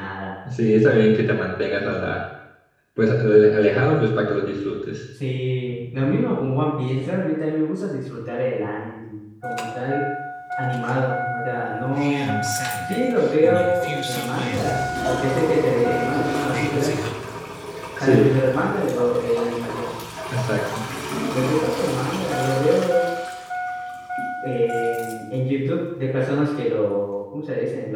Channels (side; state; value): both; identical; correlation 1.00